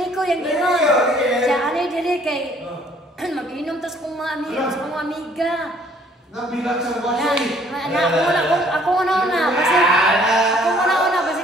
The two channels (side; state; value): both; normal; correlation 0.60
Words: yang ginon. Siya ani diri kay mag-inom tas kung mga amiga. Nabilang sa wasay. Ako una basi